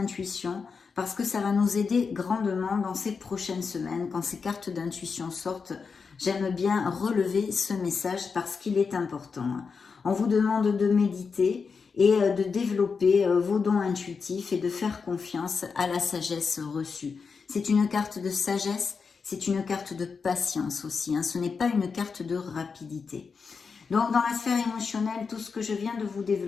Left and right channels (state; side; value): quieter; right; 5.3 dB